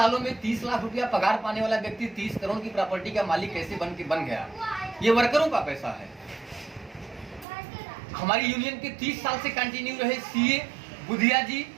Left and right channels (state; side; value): drops out; left; at 7.5 s